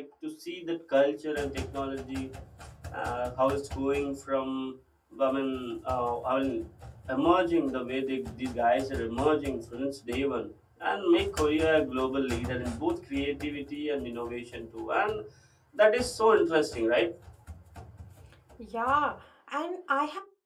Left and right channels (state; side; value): identical; both; correlation 1.00